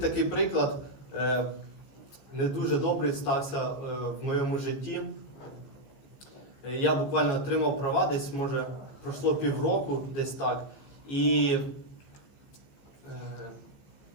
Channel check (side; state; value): right; late; 15 ms